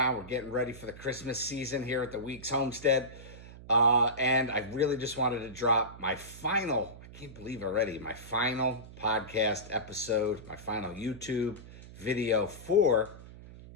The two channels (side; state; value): right; noise; hum, 16 dB below the sound